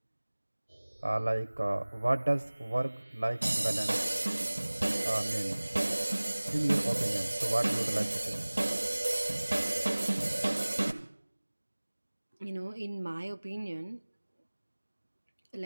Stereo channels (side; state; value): both; inverted; correlation -1.00